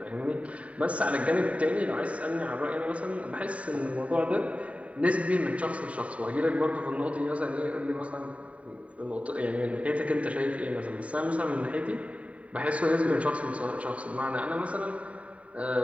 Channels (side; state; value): left; late; 0.066 ms